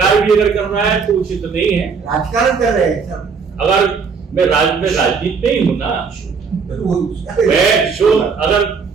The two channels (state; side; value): quieter; left; 5.5 dB